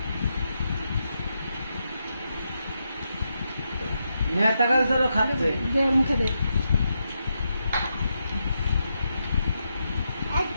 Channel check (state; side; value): inverted; both; correlation -0.84